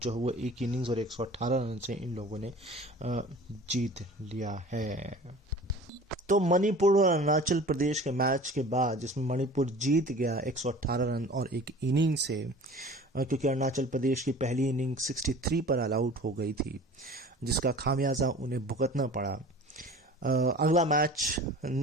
हुआ 1 इनिंग्स और 118 रन से इन लोगों ने जीत लिया है। तो मणिपुर और अरुणाचल प्रदेश के मैच के बाद, जिसमें मणिपुर जीत गया 118 रन और 1 इनिंग से, क्योंकि अरुणाचल प्रदेश की पहली इनिंग 63 पर ऑल आउट हो गई थी, जिसका खामियाजा उन्हें भुगतना पड़ा। अगला मैच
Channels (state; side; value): normal; both; correlation 0.42